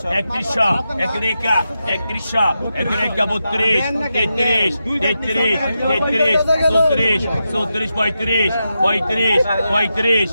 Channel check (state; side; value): inverted; both; correlation -0.88